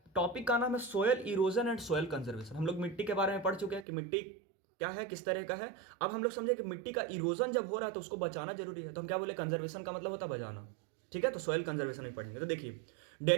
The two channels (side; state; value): left; drops out; at 3.9 s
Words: टॉपिक का नाम है soil erosion and soil conservation. हम लोग मिट्टी के बारे में पढ़ चुके हैं कि मिट्टी क्या है, किस तरह का है। अब हम लोग समझे कि मिट्टी का इरोजन जब हो रहा है तो उसको बचाना जरूरी है, तो हम क्या बोले, कंजर्वेशन का मतलब होता है बचाना। ठीक है, तो सोयल कंजर्वेशन ही पढ़ेंगे। तो देखिए,